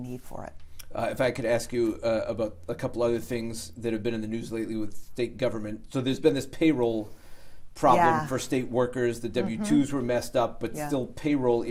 for it. If I could ask you about a couple other things that have been in the news lately with state government. So there's been this payroll problem for state workers. The W-2s were messed up, but still payroll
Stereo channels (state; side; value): identical; both; correlation 1.00